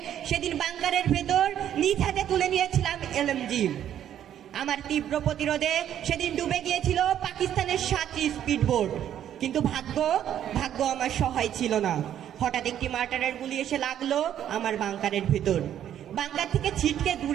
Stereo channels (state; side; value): quieter; left; 10.5 dB